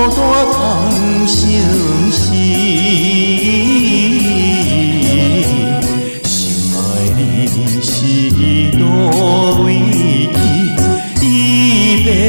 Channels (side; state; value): both; inverted; correlation -1.00